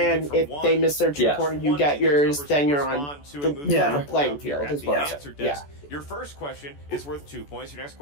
if they miss their 2-pointer, you get yours, then you're on the level playing field, is what I'm saying. Yeah. Your first question is worth 2 points. Your next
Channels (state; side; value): late; right; 14 ms